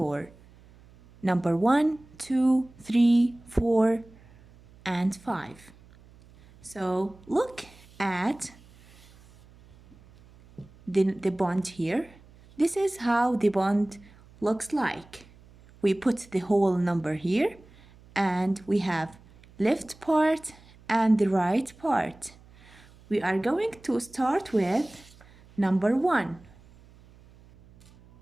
number 1, 2, 3, 4, and 5. So look at the bond here. This is how the bond looks like. We put the whole number here and we have left part and the right part. We are going to start with number 1.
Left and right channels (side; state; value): right; noise; hum, 25 dB below the sound